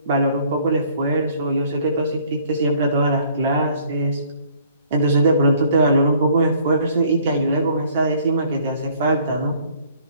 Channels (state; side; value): inverted; both; correlation -0.59